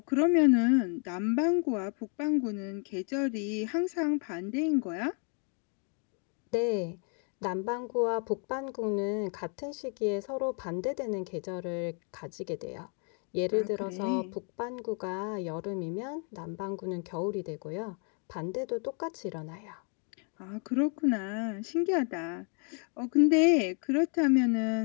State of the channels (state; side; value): quieter; right; 39.5 dB